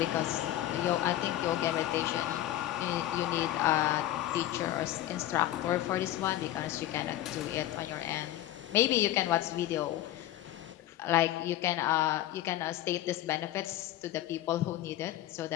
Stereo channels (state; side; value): quieter; right; 13.9 dB